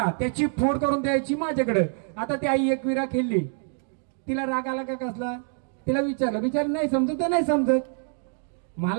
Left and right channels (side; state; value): left; silent; 57 dB below the other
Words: त्याची फोड करून द्यायची माझ्याकडे. आता ती आई एकविरा खेळली, तिला राग आला का कसला? तिला विचारलं नाही समजत तर नाही समजत.